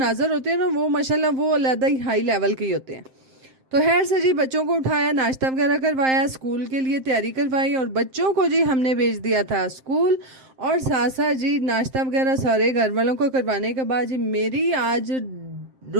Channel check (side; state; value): left; late; 7.6 ms